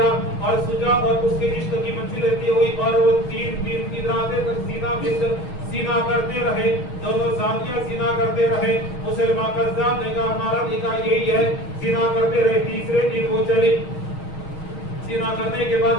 اور سجا اور اس کے عشق کی منزل رہتی ہوئی اور وہ 3 دن کی راتیں تک سینا کرتے رہے، دونوں زانیاں سینا کرتے رہے. مسلمان قذاب نے کہا ہمارا نکاح یہی ہے، سینا کرتے رہے. تیسرے دن وہ چلی. سینا کرنے کے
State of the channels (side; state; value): right; late; 6.4 ms